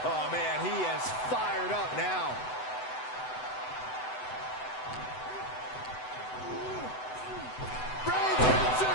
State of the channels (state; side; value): late; right; 7.9 ms